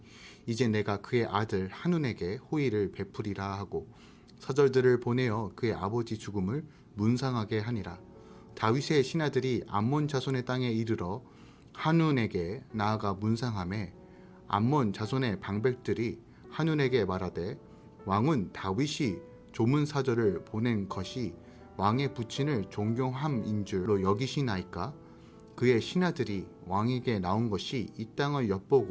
이제 내가 그의 아들 한운에게 호의를 베풀이라 하고 서절들을 보내어 그의 아버지 죽음을 문상하게 하니라. 다윗의 신하들이 암몬 자손의 땅에 이르러 한운에게 나아가 문상하매 암몬 자손의 방백들이 한운에게 말하되 왕은 다윗이 조문사절을 보낸 것이 왕의 부친을 존경함인 줄로 여기시나이까? 그의 신하들이 왕에게 나온 것이 이 땅을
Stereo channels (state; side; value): identical; both; correlation 1.00